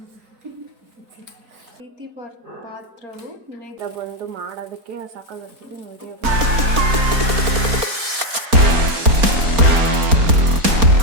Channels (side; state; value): left; late; 4.3 ms